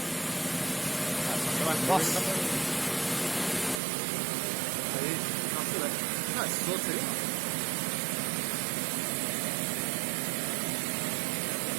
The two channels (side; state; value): left; drops out; at 3.8 s